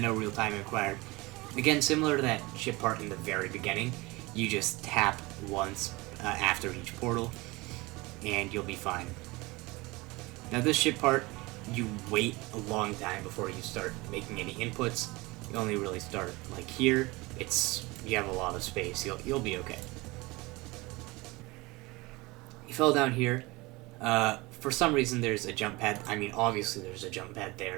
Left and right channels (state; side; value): quieter; left; 22.9 dB